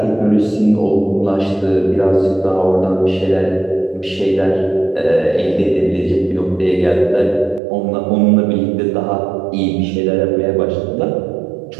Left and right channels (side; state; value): left; drops out; at 7.6 s